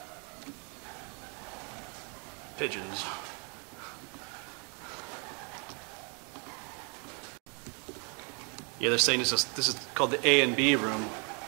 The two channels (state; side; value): quieter; left; 35.7 dB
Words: Pigeons. Yeah, they're saying this is called the A and B room.